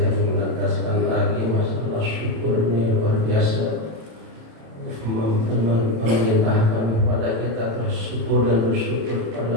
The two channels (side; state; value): left; late; 27 ms